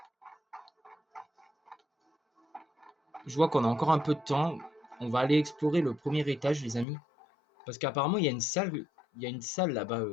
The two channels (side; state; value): right; drops out; at 6.9 s